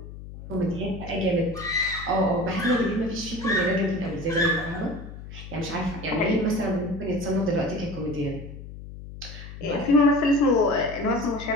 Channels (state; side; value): noise; left; hum, 13 dB below the sound